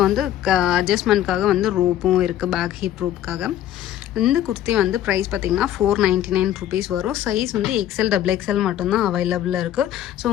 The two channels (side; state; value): right; quieter; 11.9 dB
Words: வந்து அட்ஜஸ்ட்மெண்ட்காக வந்து ரோப்பும் இருக்குது, பேக் ஹிப் ரோப்புக்காக. இந்த குர்த்தி வந்து ப்ரைஸ் பார்த்திங்கன்னா 499 ருபீஸ் வரும். சைஸ் வந்து XL XXL மட்டும்தான் அவைலபிளாக இருக்குது. ஸோ